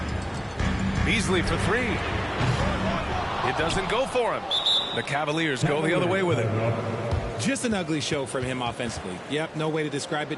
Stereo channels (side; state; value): both; identical; correlation 1.00